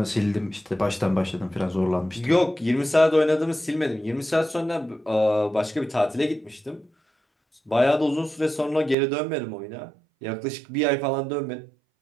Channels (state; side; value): drops out; left; at 9.0 s